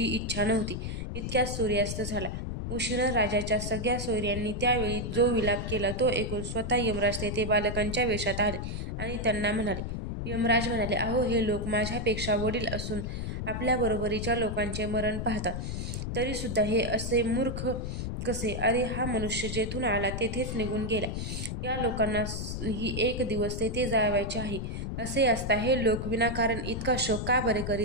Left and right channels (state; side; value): noise; left; rumble, 4 dB below the sound